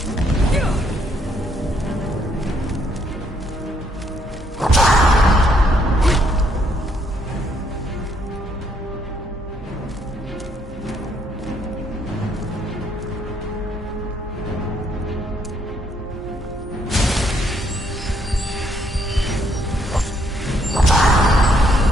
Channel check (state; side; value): normal; both; correlation 0.70